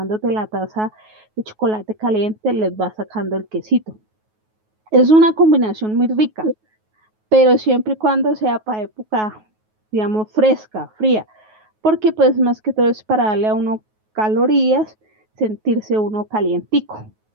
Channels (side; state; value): left; late; 9.3 ms